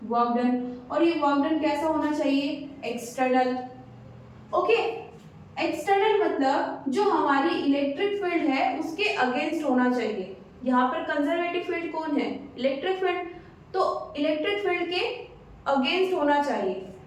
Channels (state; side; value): identical; both; correlation 1.00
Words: वर्क डन, और ये वर्क डन कैसा होना चाहिए, एक्सटर्नल। ओके, एक्सटर्नल मतलब जो हमारी इलेक्ट्रिक फील्ड है उसके अगेंस्ट होना चाहिए। यहाँ पर कंजर्वेटिव फील्ड कौन है, इलेक्ट्रिक फील्ड, तो इलेक्ट्रिक फील्ड के अगेंस्ट होना चाहिए।